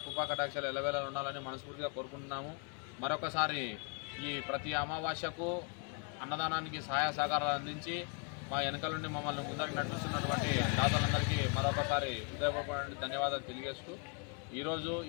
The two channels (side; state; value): right; quieter; 38.2 dB